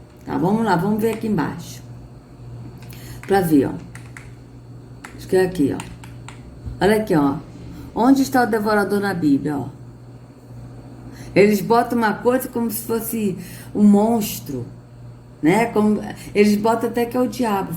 Tá, vamos lá, vamos ver aqui embaixo. Pra ver, ó. Acho que é aqui, ó. Olha aqui, ó. Onde está o devorador na Bíblia, ó? Eles botam uma coisa como se fosse um monstro, né? Eles botam até que é o diabo.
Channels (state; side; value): identical; both; correlation 1.00